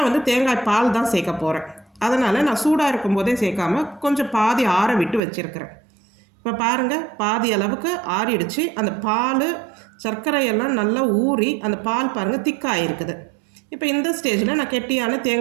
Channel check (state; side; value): drops out; left; at 5.2 s